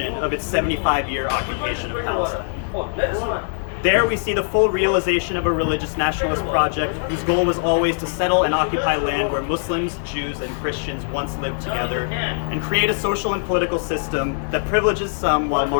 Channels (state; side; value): silent; right; 61 dB below the other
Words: of its 75-year occupation of Palestine. There we see the full realization of a religious nationalist project whose goal was always to settle and occupy land where Muslims, Jews, and Christians once lived together, and create a social and political system that privileges some while